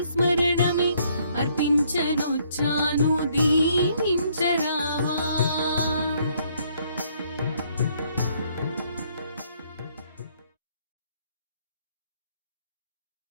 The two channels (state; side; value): inverted; both; correlation -0.67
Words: స్మరణమే అర్పించనొచ్చాను దీవించరావా.